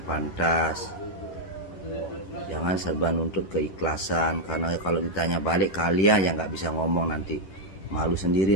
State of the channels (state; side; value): late; right; 10 ms